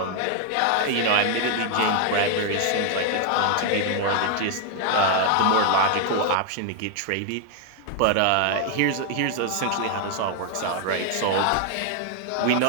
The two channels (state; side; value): different; both; correlation 0.00